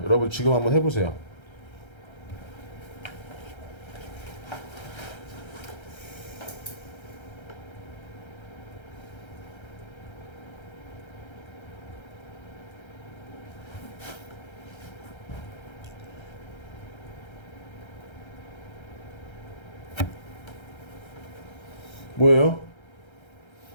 여러분 지금 한번 해보세요. 뭐예요?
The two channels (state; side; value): late; right; 1.3 ms